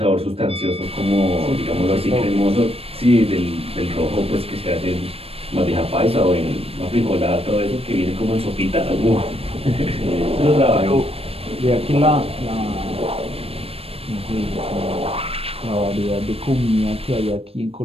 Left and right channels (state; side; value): late; left; 0.28 ms